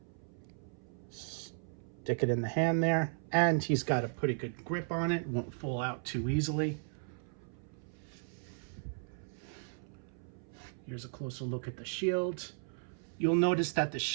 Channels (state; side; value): silent; left; 54 dB below the other